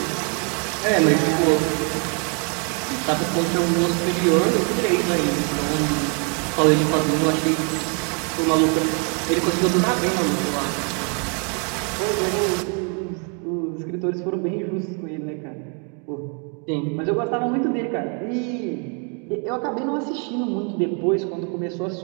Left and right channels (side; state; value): left; quieter; 38.7 dB